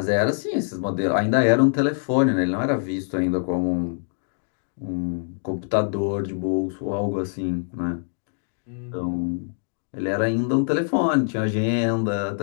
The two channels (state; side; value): silent; right; digital silence